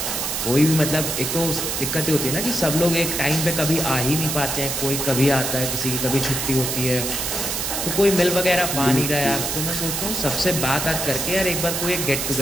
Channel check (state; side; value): noise; right; hiss, 2 dB below the sound